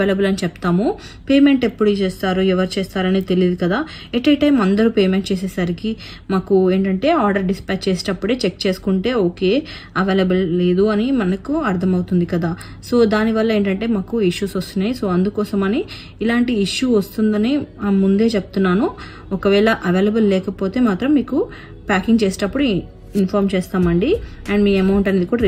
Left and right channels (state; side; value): identical; both; correlation 1.00